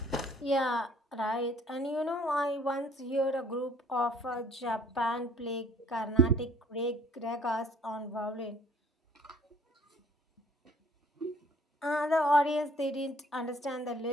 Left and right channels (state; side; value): normal; both; correlation 0.57